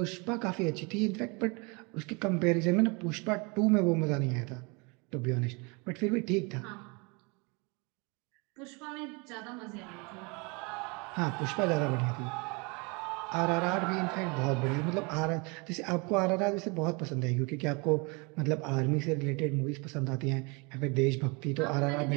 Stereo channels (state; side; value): quieter; left; 29.8 dB